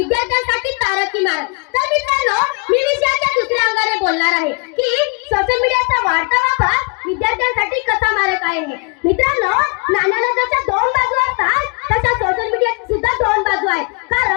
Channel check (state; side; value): quieter; right; 33.9 dB